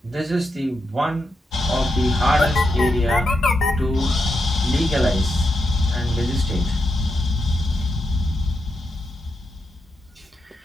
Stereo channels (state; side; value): normal; both; correlation 0.84